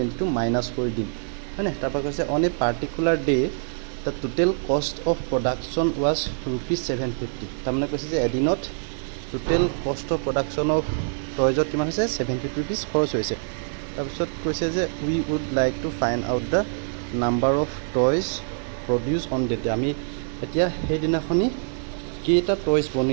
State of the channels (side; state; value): left; silent; 62 dB below the other